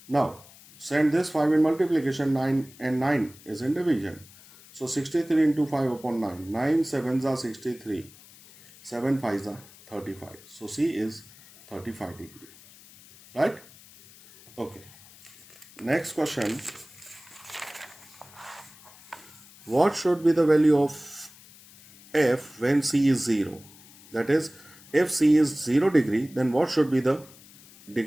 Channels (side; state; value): left; noise; hiss, 22 dB below the sound